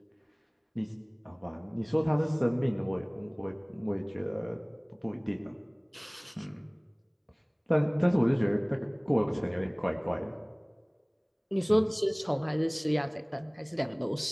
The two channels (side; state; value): both; identical; correlation 1.00